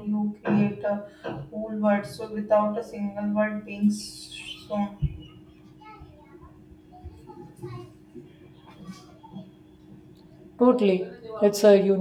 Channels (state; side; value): identical; both; correlation 1.00